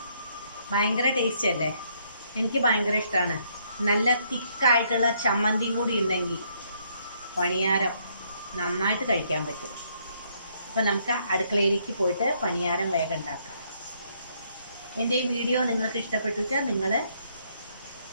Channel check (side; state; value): both; inverted; correlation -0.70